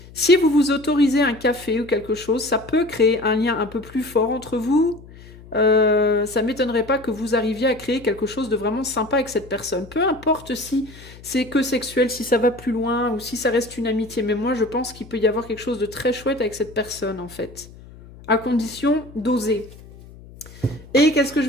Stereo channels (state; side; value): noise; left; hum, 20 dB below the sound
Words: Si vous vous autorisez un café ou quelque chose, ça peut créer un lien un peu plus fort entre vous. Ça ne m'étonnerait pas que vous arriviez à créer quelque chose de vraiment sympa avec cette personne. Peu importe si c'est que sexuel, si ça va plus loin ou si ça reste une amitié. Mais moi, je pense qu'il peut y avoir quelque chose de très chouette avec cette personne, en fait. À condition d'oser. Et qu'est-ce que je